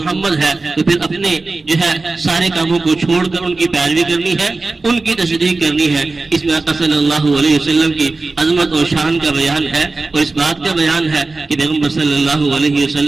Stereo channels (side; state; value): left; quieter; 3.5 dB